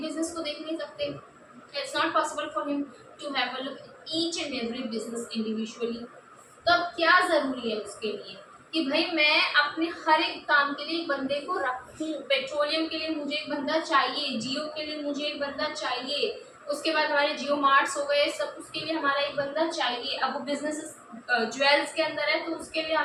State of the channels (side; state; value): both; identical; correlation 1.00